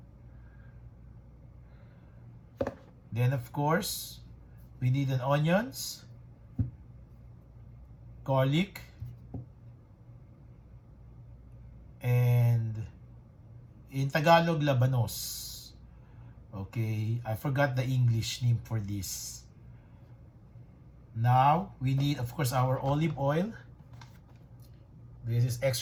Then, of course, we need an onions, garlic, and in Tagalog, labanos. Okay, I forgot the English name for this. Now, we need, of course, our olive oil. This is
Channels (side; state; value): both; identical; correlation 1.00